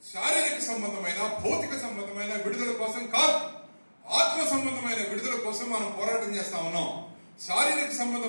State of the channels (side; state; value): both; inverted; correlation -1.00